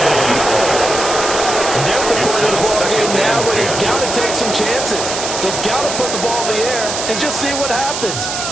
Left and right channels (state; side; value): noise; right; hiss, 4 dB below the sound